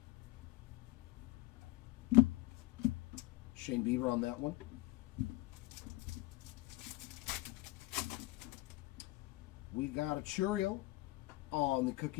Shane Bieber on that one. We got a Churiel on the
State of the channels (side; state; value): right; quieter; 19.0 dB